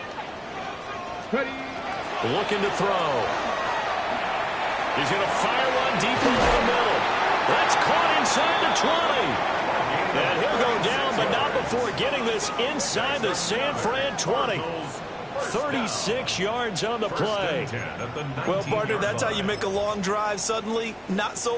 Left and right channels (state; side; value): identical; both; correlation 1.00